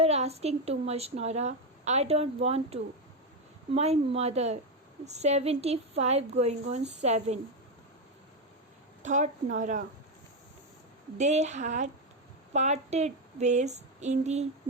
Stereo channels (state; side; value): normal; both; correlation 0.09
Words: asking too much, Nora. I don't want to. My mother, 75 going on 7, thought Nora. They had parted ways in the